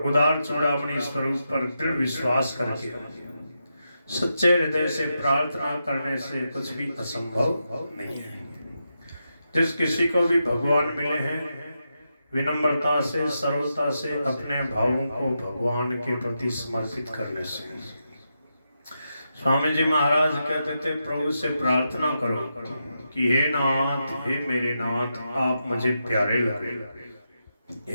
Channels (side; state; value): both; inverted; correlation -0.86